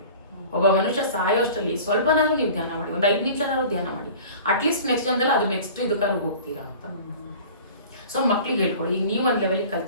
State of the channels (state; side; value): inverted; both; correlation -0.42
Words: ಒಬ್ಬ ಮನುಷ್ಯ ಸಾಯೋಷ್ಟರಲ್ಲಿ ಸ್ವಲ್ಪನಾದ್ರೂ ನೀವು ಧ್ಯಾನ ಮಾಡಿ, 5 ನಿಮಿಷನಾದ್ರು ಧ್ಯಾನ ಮಾಡಿ. ಅಟ್ಲೀಸ್ಟ್ ನೆಕ್ಸ್ಟ್ ಜನ್ಮದಲ್ಲಿ ಅದು ನೆಕ್ಸ್ಟ್ ಇದಕ್ಕಾದ್ರು ಹೋಗ್ತೀರಾ ಅಂತ. ಸೊ ಮಕ್ಳಿಗೆ ಹೇಳ್ಕೊಳ್ಳಿ. ಈಗ ನೀವು ಒಂದು ಲೆವೆಲಿಗೆ